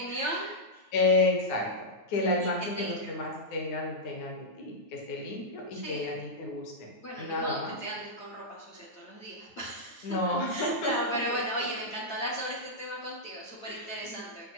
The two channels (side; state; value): right; late; 9.2 ms